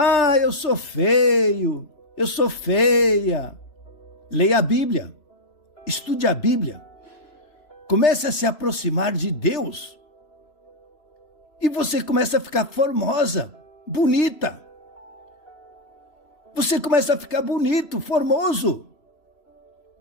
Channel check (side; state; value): right; late; 3.0 ms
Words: eu sou feio, eu sou feia. Leia a Bíblia, estude a Bíblia, comece a se aproximar de Deus e você começa a ficar formosa, bonita. Você começa a ficar bonito, formoso.